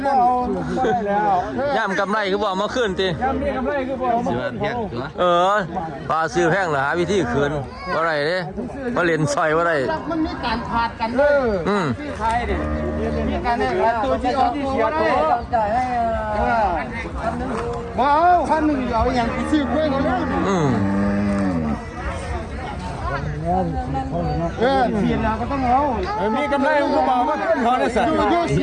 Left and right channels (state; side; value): identical; both; correlation 1.00